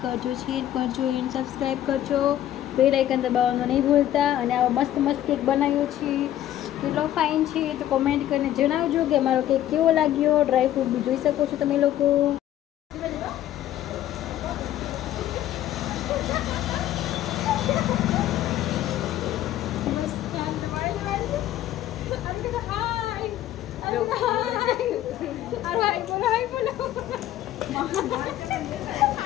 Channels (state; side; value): quieter; right; 12.6 dB